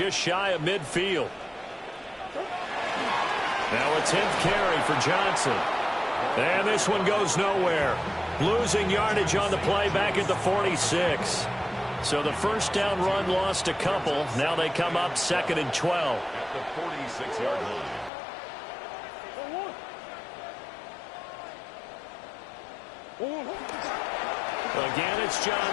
shy of midfield. Now a 10th carry for Johnson. And this one goes nowhere. Losing yardage on the play back at the 46. So the first down run lost a couple. Now they come up 2nd and 12. At the 46-yard line. Again, it's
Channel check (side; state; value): right; drops out; at 18.1 s